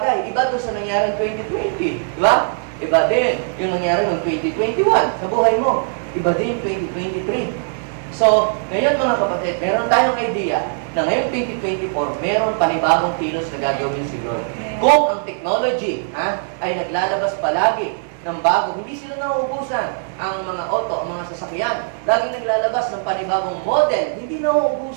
Iba doon sa nangyari ng 2020. Diba? Iba din yung nangyari ng 2021 sa buhay mo. Iba din 2023. So, ngayon mga kapatid, meron tayong idea na ngayong 2024, meron panibagong kilos na gagawin si Lord. Kung ang technology ay naglalabas palagi ng bago, hindi sila nauubusan. Ang mga auto, ang mga sasakyan, laging naglalabas ng panibagong model. Hindi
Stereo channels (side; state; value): left; silent; digital silence